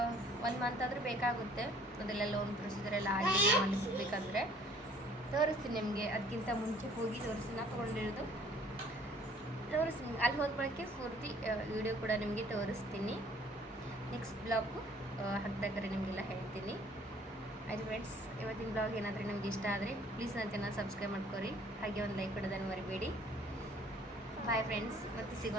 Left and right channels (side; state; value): both; normal; correlation 0.56